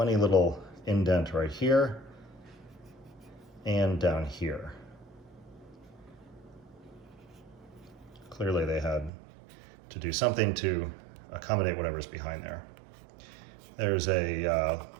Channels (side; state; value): left; drops out; at 9.1 s